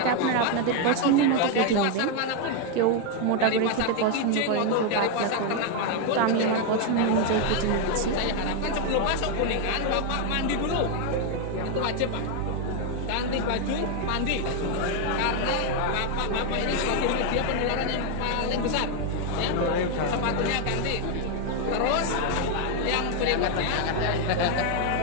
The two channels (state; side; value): different; both; correlation 0.01